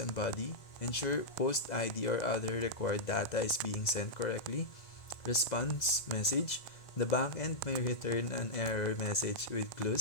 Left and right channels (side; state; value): right; late; 2.0 ms